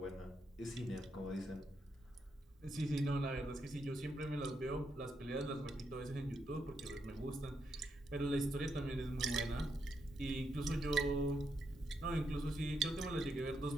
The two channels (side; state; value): both; normal; correlation 0.80